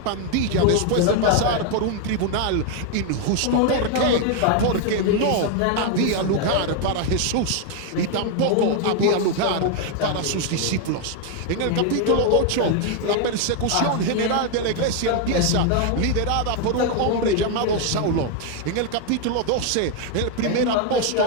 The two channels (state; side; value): different; both; correlation 0.01